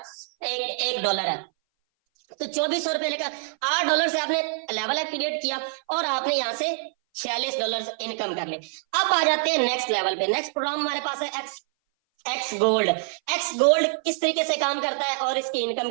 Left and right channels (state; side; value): silent; left; 59 dB below the other